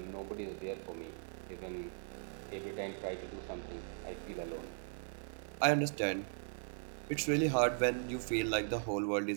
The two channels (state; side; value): silent; left; digital silence